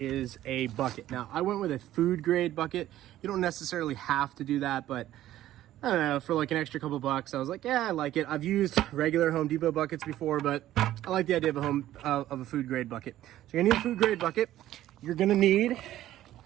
a bucket. Now, I went with a food grade bucket. You don't necessarily have to do that, but I don't know, for like an extra couple bucks, I was like, yeah, I like it. I've used regular Home Depot buckets before, but I like the idea of a food grade bucket. So you're gonna need a food grade bucket. You're gonna need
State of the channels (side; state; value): left; quieter; 13.6 dB